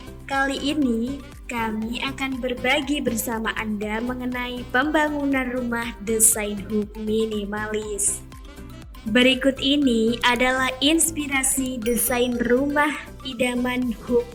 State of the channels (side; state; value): both; identical; correlation 1.00